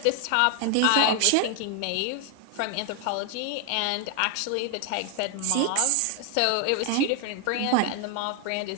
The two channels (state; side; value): different; both; correlation 0.00